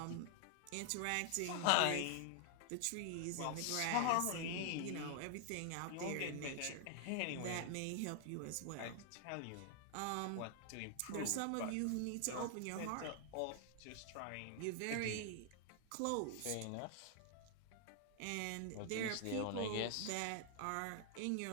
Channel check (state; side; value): different; both; correlation 0.00